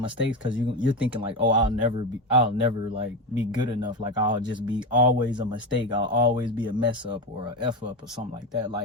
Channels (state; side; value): normal; both; correlation 0.17